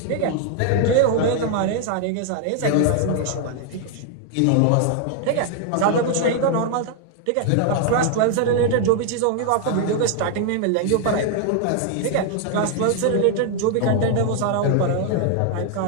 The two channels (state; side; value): different; both; correlation 0.00